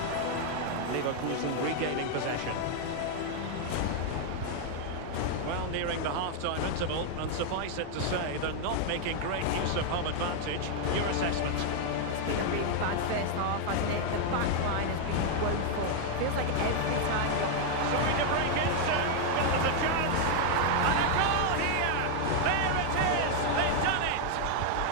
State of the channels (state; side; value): different; both; correlation 0.00